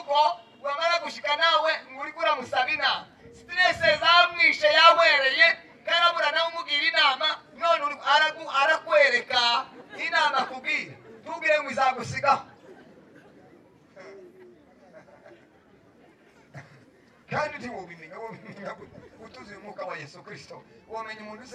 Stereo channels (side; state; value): both; identical; correlation 1.00